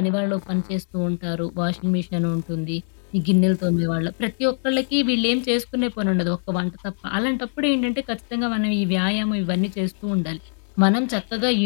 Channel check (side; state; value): right; silent; digital silence